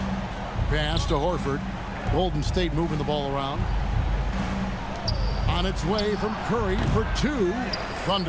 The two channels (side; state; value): both; identical; correlation 1.00